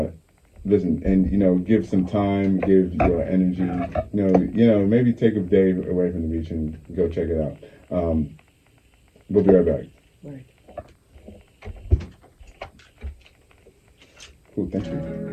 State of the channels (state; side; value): identical; both; correlation 1.00